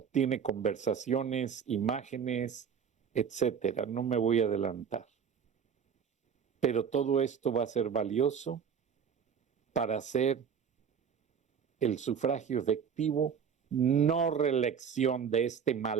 conversaciones, imágenes, etcétera. No me voy a adelantar. Pero todo esto va a ser valioso para hacer el sufragio efectivo, no reelección de este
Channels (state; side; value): quieter; left; 7.3 dB